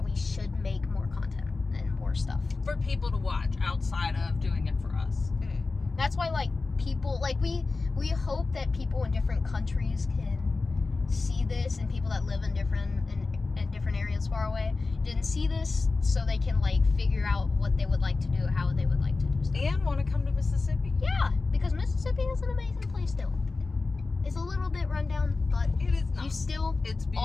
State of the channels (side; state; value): right; quieter; 3.8 dB